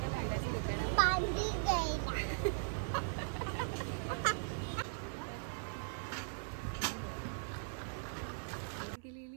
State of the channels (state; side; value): silent; left; 52 dB below the other